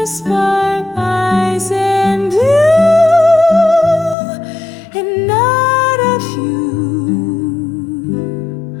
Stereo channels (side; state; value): right; drops out; at 4.2 s